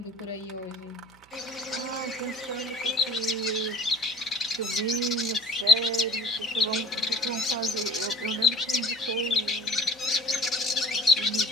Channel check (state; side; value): noise; right; hum, 29 dB below the sound